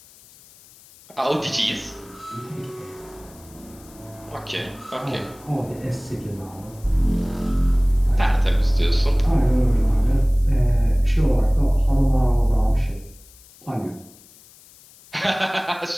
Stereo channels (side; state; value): left; noise; hiss, 24 dB below the sound